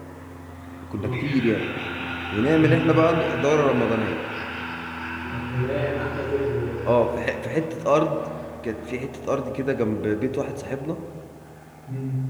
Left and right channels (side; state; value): both; identical; correlation 1.00